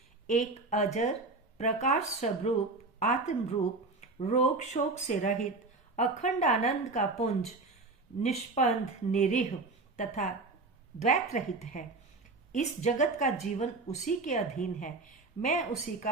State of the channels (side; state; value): left; quieter; 3.5 dB